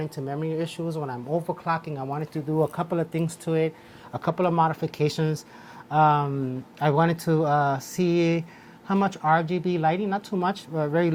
into memory issues when I'm overclocking. I wanted to do a couple of things to it, a couple of modifications. I wanted to see how much RGB lighting, not too much, very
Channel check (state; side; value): identical; both; correlation 1.00